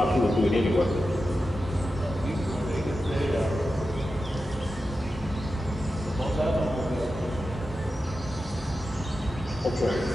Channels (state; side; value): normal; both; correlation 0.91